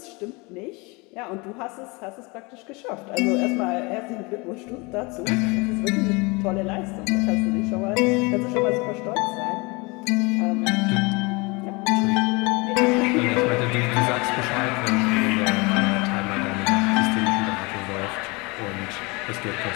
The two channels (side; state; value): right; quieter; 27.1 dB